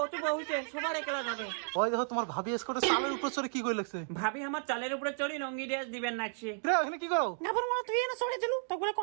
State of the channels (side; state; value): left; silent; digital silence